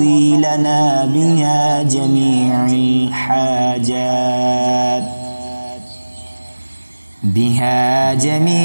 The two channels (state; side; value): inverted; both; correlation -1.00